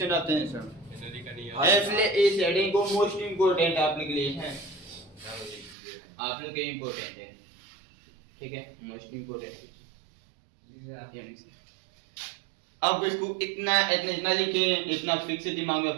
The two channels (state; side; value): drops out; left; at 5.8 s